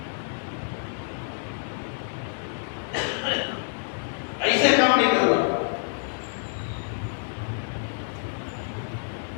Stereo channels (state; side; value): silent; right; digital silence